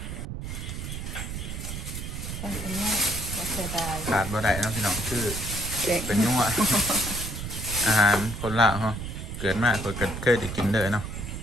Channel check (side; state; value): right; noise; rumble, 6 dB below the sound